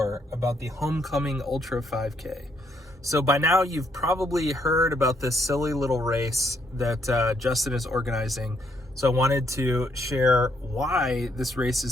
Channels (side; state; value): both; normal; correlation 0.73